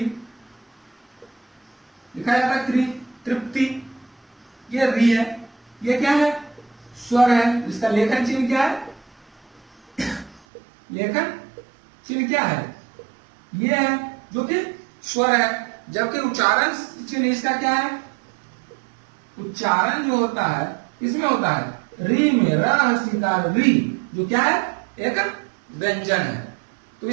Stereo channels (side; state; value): left; drops out; at 10.4 s